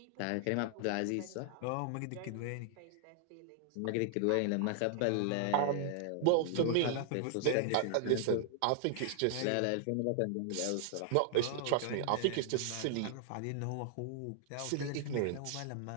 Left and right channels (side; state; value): both; different; correlation -0.01